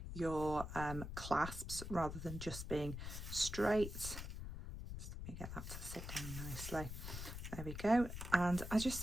your clasps rather than just being straight. Let me get that to sit down nicely. There we go. And I just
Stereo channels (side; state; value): left; noise; rumble, 7 dB below the sound